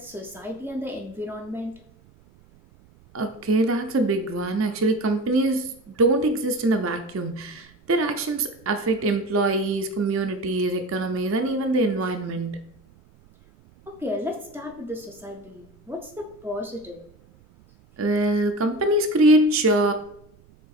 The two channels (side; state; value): right; noise; rumble, 28 dB below the sound